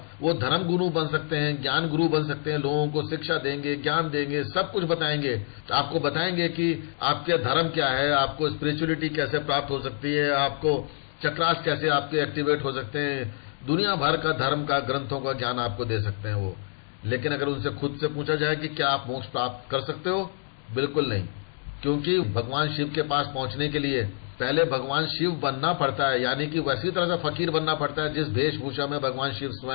वो धर्म गुरु बन सकते हैं, ज्ञान गुरु बन सकते हैं, लोगों को शिक्षा देंगे, ज्ञान देंगे, सब कुछ बताएंगे। आपको बताएंगे कि आपके धर्म क्या है, आपको स्पिरिचुअलिटी कैसे प्राप्त हो सकती है, आपको चक्रास कैसे आपके एक्टिवेट हो सकते हैं, दुनिया भर का धर्म का, ग्रंथों का ज्ञान आपको दे सकते हैं वो। लेकिन अगर उनसे खुद से पूछा जाए कि क्या आप मोक्ष प्राप्त कर सकते हो, बिल्कुल नहीं। क्योंकि भगवान शिव के पास पहुंचने के लिए पहले भगवान शिव बनना पड़ता है, यानी कि वैसी तरह से फकीर बनना पड़ता है जिस वेशभूषा में भगवान शिव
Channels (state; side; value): silent; right; 60 dB below the other